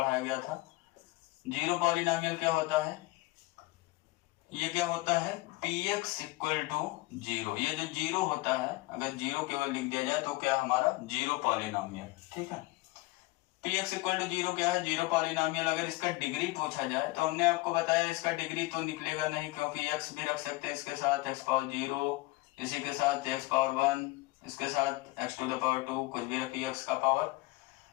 गया था। जीरो पॉलिनोमियल क्या होता है, ये क्या होता है px इक्वल टू 0। ये जो जीरो होता है, अगर जीरो केवल लिख दिया जाए तो क्या हमारा जीरो पॉलिनोमियल। ठीक है, px इक्वल टू 0 क्या है, जीरो पॉलिनोमियल। अगर इसका डिग्री पूछा जाए तो हमने आपको बताया इसका डिग्री तो निकलेगा नहीं, क्योंकि x भी रख सकते हैं इसके साथ x पावर 0, इसी के साथ x पावर 1, इसके साथ x टू द पावर 2, कुछ भी रखिए x का पावर।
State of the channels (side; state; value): right; quieter; 21.4 dB